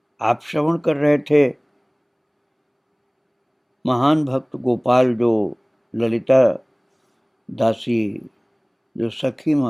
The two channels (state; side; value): identical; both; correlation 1.00